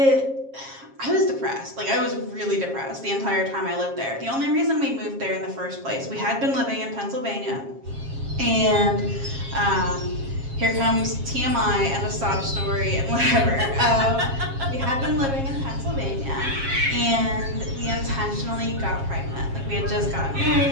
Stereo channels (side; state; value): left; late; 7.4 ms